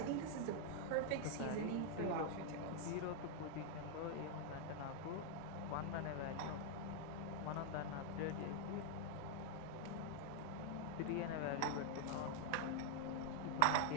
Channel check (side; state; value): both; different; correlation 0.00